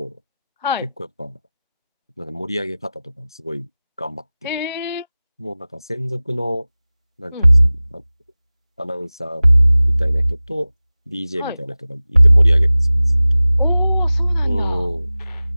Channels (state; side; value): inverted; both; correlation -0.97